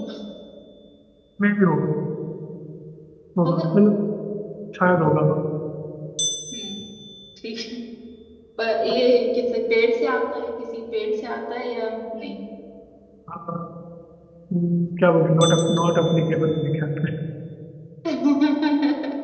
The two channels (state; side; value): identical; both; correlation 1.00